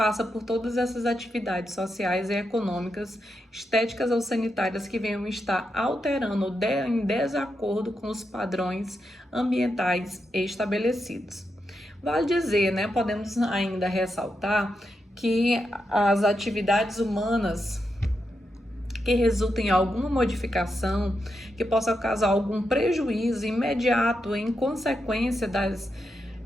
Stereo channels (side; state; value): both; normal; correlation 0.85